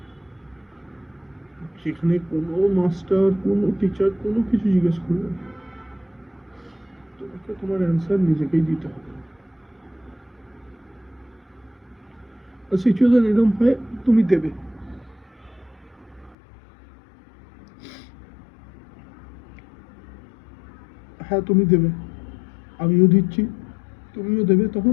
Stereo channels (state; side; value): drops out; right; at 16.4 s